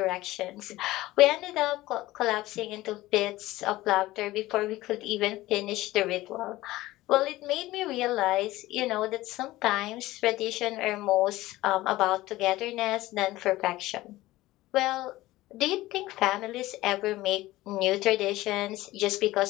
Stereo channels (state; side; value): quieter; right; 17.5 dB